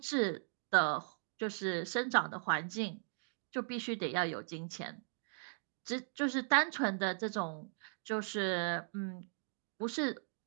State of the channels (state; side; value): silent; left; digital silence